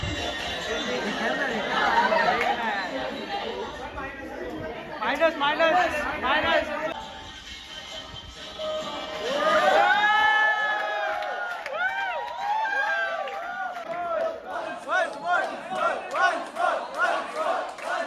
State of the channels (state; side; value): identical; both; correlation 1.00